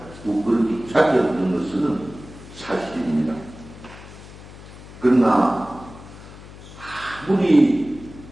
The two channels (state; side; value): noise; left; hum, 17 dB below the sound